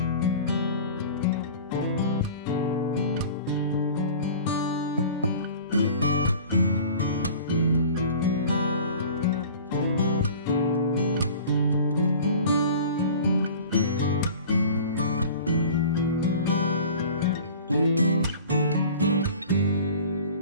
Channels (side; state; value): both; inverted; correlation -0.42